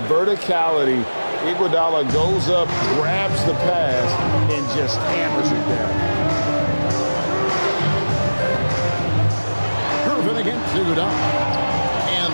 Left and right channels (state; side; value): inverted; both; correlation -1.00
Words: verticality, Iguodala goes up, grabs the pass, and just hammers it down. Gervin against Iguodala.